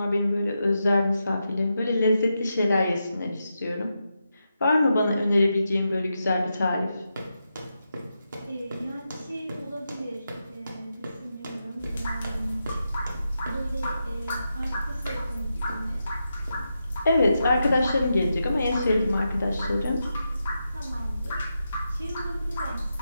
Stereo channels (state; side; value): inverted; both; correlation -0.87